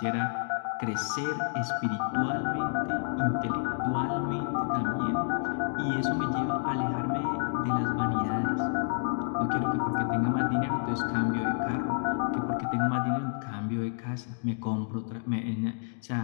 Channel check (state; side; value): silent; right; digital silence